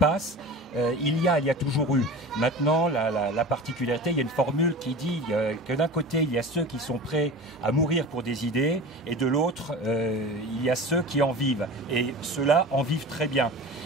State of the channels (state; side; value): normal; both; correlation 0.35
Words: il y a toujours eu. Maintenant, la particularité, il y a une formule qui dit que d'un côté, il y a ceux qui sont prêts à mourir pour des idées, et de l'autre, il y a ceux qui en vivent. Et ceux-là en vivent très bien.